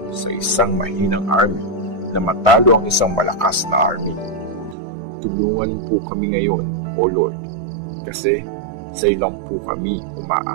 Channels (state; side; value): drops out; left; at 4.8 s